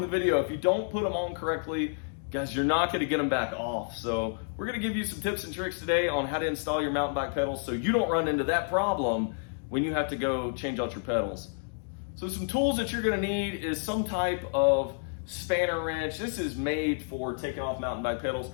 the video, if you don't put them on correctly, guys, you're not going to get them back off. So we're going to give you some tips and tricks today on how to install your mountain bike pedals so you don't run into that problem when you have to go change out your pedals. So some tools that you're going to need is some type of spanner wrench. This is made for taking off mountain bike pedals,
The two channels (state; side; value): silent; right; digital silence